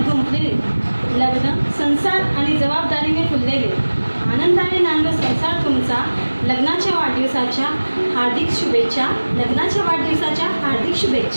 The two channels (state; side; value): inverted; both; correlation -1.00